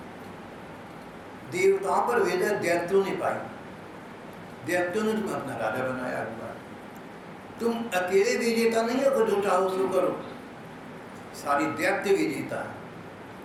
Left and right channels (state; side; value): identical; both; correlation 1.00